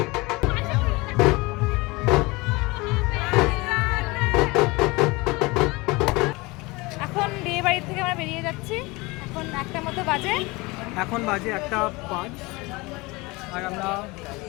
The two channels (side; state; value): right; quieter; 23.9 dB